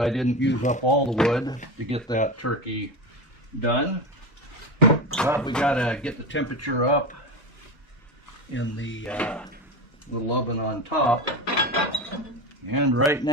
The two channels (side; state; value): both; normal; correlation 0.21